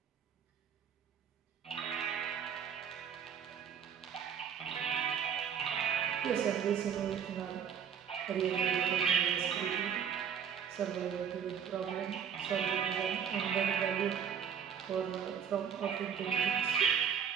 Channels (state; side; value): quieter; left; 7.9 dB